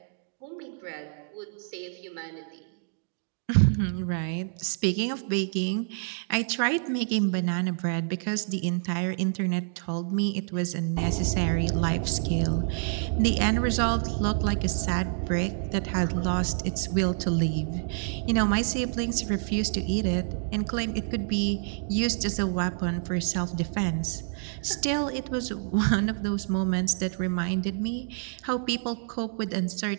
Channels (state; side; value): silent; left; 59 dB below the other